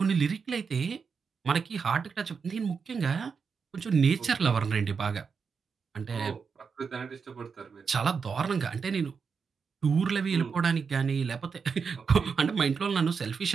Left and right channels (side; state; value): left; quieter; 5.7 dB